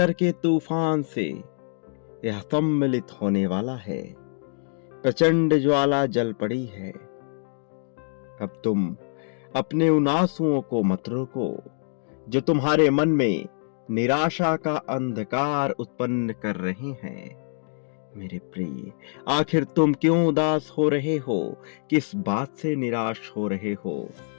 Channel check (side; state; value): right; silent; digital silence